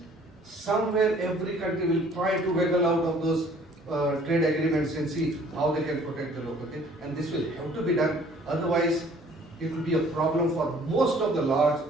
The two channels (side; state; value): both; normal; correlation 0.55